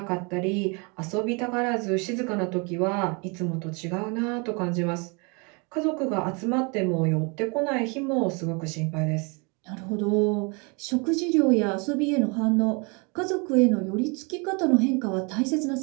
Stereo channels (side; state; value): left; quieter; 31.6 dB